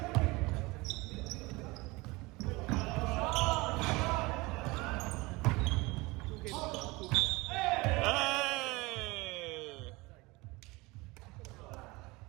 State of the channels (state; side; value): quieter; left; 23.3 dB